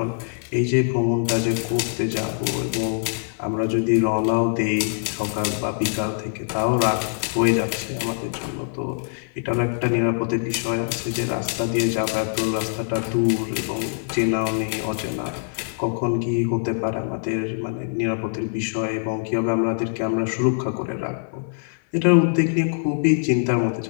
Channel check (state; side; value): silent; right; digital silence